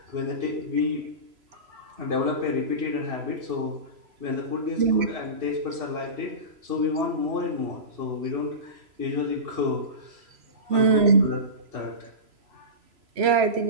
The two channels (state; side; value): late; left; 3.0 ms